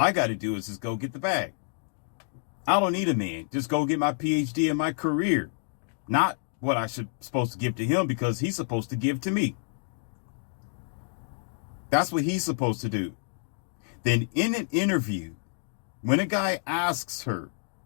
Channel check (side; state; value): right; silent; digital silence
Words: got to do is just go get the bag. I don't need a man. Just go get my PhD and my career. Not what I supposed to give to him because he's supposed to give to me. That's what he's supposed to do. Then in an interview, when a guy asks her,